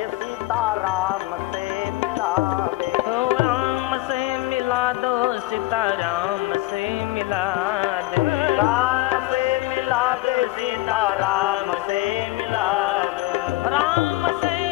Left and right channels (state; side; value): quieter; right; 18.6 dB